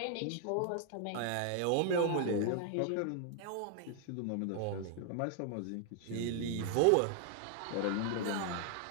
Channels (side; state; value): both; different; correlation 0.00